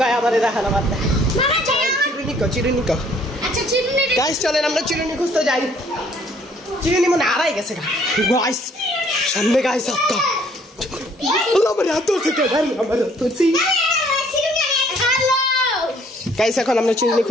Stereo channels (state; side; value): normal; both; correlation 0.61